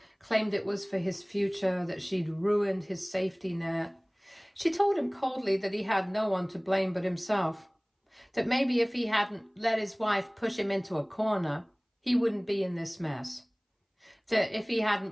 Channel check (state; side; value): identical; both; correlation 1.00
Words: claimed it was for his future, that she'd ruined his safety net. She told him coldly that he had no one to blame but himself, that maybe if he hadn't let his wife push him into a corner, he wouldn't be in this mess. That if he